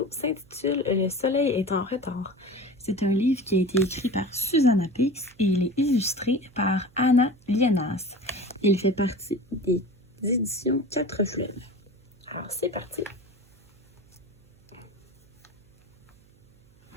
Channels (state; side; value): noise; right; hum, 30 dB below the sound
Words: s'intitule Le soleil est en retard. C'est un livre qui a été écrit par Susanna Pix et il est illustré par Anna Lienas. Il fait partie des éditions 4 Fleuves. Alors c'est parti.